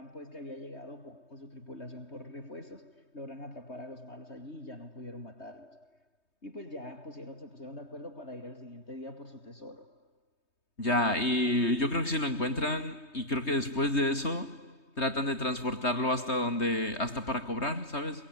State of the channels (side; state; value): right; late; 3.2 ms